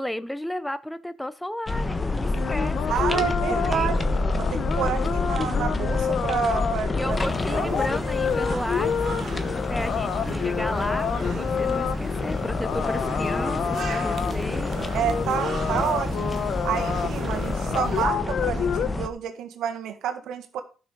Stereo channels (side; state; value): both; normal; correlation 0.77